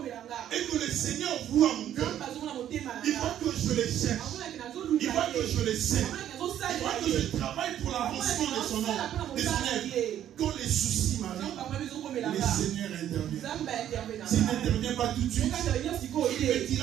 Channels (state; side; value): quieter; left; 11.0 dB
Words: et que le Seigneur voit mon cœur, il voit que je les cherche, il voit que je les sers, il voit que je travaille pour l'avancement de son œuvre. Quand les soucis m'arrivent, le Seigneur intervient. S'il n'intervient pas tout de suite, il me